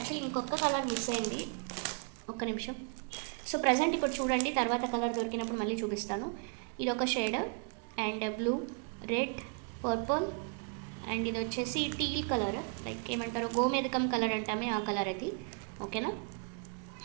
ఇంకొక కలర్ మిస్ అయింది, ఒక్క నిమిషం. సో ప్రజెంట్ ఇప్పుడు చూడండి, తర్వాత కలర్ దొరికినప్పుడు మళ్ళీ చూపిస్తాను. ఇది ఒక shade and blue, red, purple and ఇది వచ్చేసి టీల్ కలర్, లైక్ ఏమంటారు గోమేదకం కలర్ అంటామే ఆ కలర్ అది. ఓకేనా,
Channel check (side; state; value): left; quieter; 39.0 dB